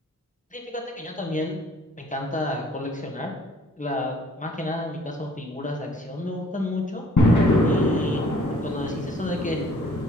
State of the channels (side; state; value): both; normal; correlation 0.58